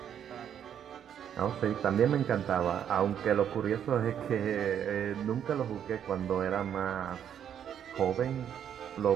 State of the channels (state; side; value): quieter; left; 9.2 dB